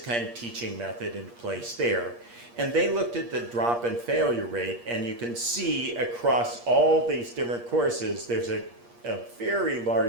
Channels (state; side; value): late; left; 8.5 ms